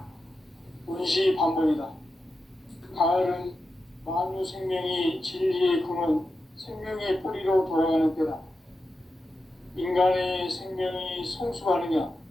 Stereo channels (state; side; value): normal; both; correlation 0.90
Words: 운시반복이다. 가을은 만유 생명이 진리의 근원, 생명의 뿌리로 돌아가는 때다. 인간의 생명이 성숙하느냐,